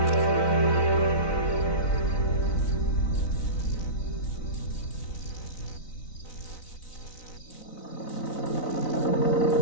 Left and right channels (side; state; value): right; late; 4.0 ms